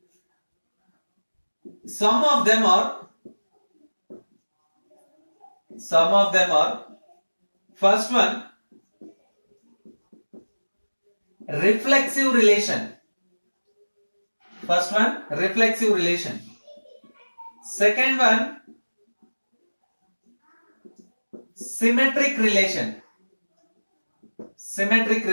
Some of them are first one, reflexive relation. Second one, symmetric relation.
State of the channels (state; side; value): inverted; both; correlation -1.00